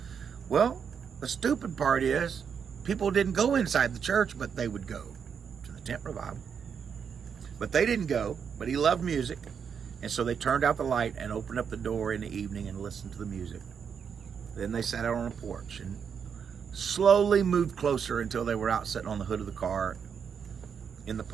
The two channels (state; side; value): quieter; left; 7.0 dB